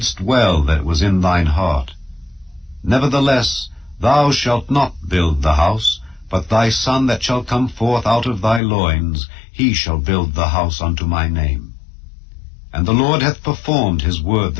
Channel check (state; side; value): drops out; right; at 8.6 s